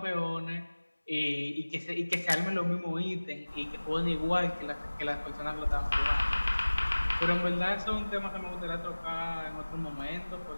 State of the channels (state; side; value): inverted; both; correlation -1.00